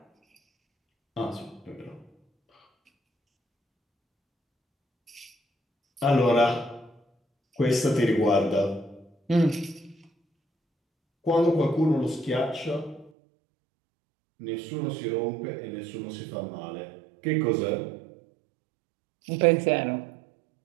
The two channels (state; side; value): drops out; left; at 13.1 s